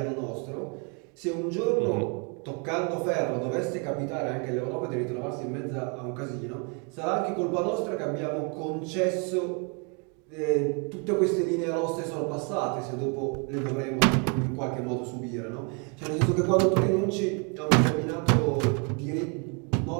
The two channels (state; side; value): quieter; left; 35.7 dB